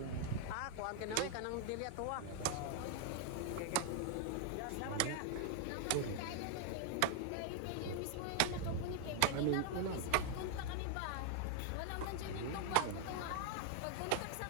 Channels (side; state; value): both; different; correlation 0.00